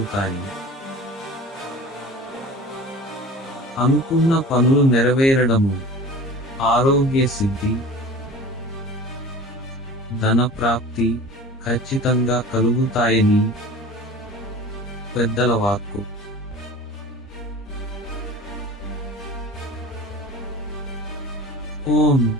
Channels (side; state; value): both; normal; correlation 0.39